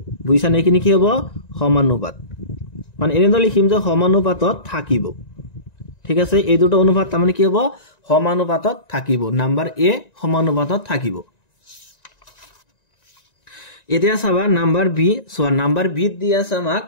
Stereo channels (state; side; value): late; right; 1.9 ms